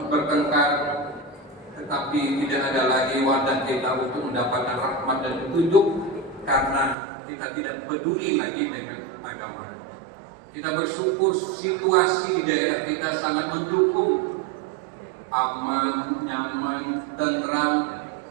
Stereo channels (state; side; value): drops out; left; at 7.0 s